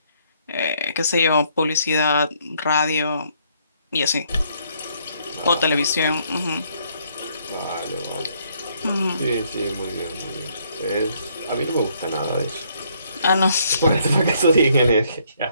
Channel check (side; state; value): both; inverted; correlation -0.68